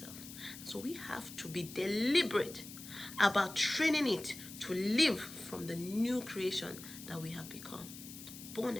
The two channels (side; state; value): left; noise; hiss, 14 dB below the sound